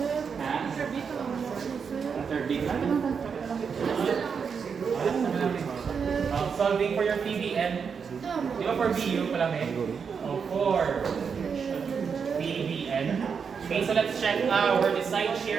Ha? Third beat. Solving for your PBN. Di ba for BU pala may? For PBN. Okay, so let's check our side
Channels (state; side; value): quieter; left; 6.2 dB